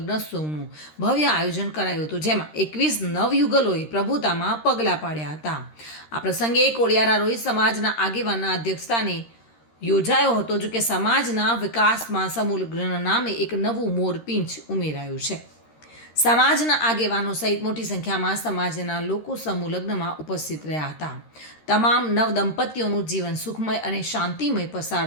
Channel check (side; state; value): right; late; 13 ms